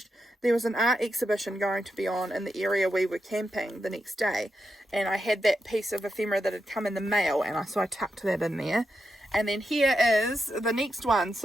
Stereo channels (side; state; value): both; normal; correlation 0.86